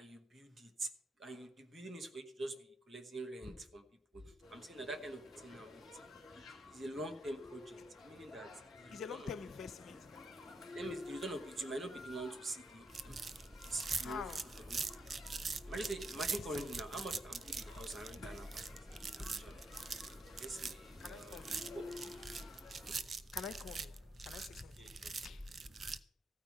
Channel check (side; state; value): both; normal; correlation 0.80